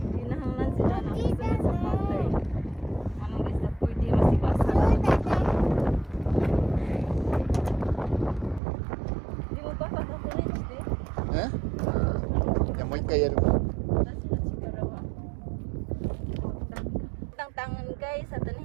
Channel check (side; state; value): left; drops out; at 8.6 s